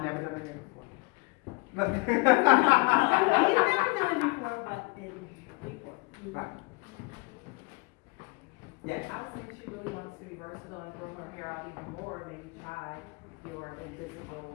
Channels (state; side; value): quieter; right; 28.2 dB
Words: never done it before. Look. You've never done it before, but before. Right. Yes. I would say she really wants to be versatile and grow her hair out even more. Maybe try your